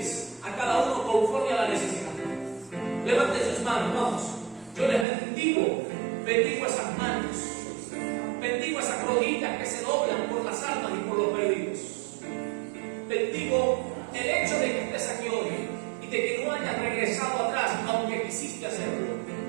a cada uno conforme a la necesidad. Levante sus manos, vamos. Yo les bendigo esas manos. Bendigo esas rodillas que se doblan por las almas y por los perdidos. Bendigo el hecho de que estés aquí hoy y de que no hayas regresado atrás, aunque quisiste hacerlo.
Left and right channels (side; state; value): left; drops out; at 5.1 s